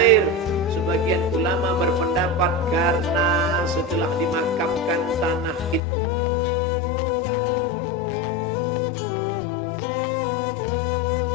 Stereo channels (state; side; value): drops out; right; at 5.8 s